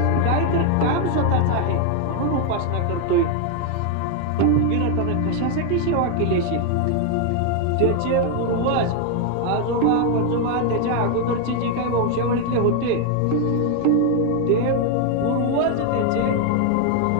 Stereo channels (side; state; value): both; different; correlation 0.01